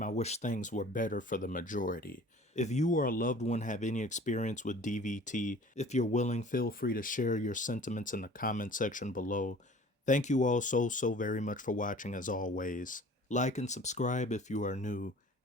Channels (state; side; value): normal; both; correlation 0.47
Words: I wish things were better for the majority. If you or a loved one have any experience with DVT, if you're willing, feel free to share your sentiments in the comment section below. Thank you all so very much for watching as always. Like and subscribe if you are new,